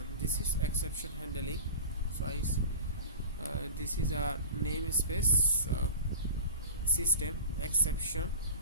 this is exception handling. So this is a namespace system exception,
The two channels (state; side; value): inverted; both; correlation -0.34